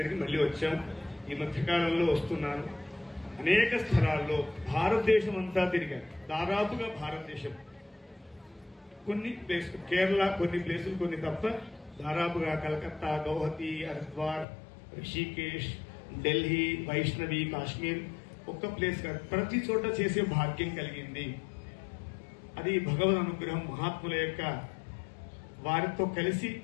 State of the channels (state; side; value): drops out; right; at 14.5 s